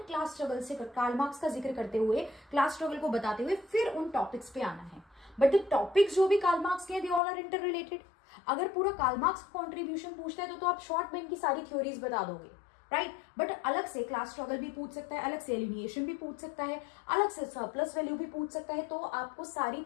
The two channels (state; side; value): drops out; right; at 7.2 s